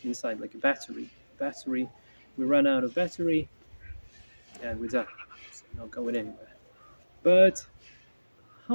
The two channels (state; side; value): inverted; both; correlation -1.00